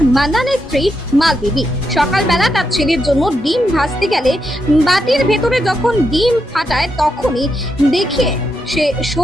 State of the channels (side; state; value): both; normal; correlation 0.83